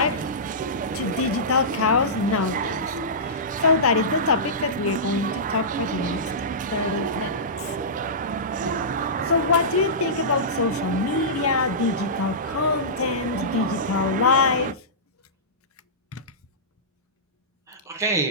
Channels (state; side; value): normal; both; correlation -0.19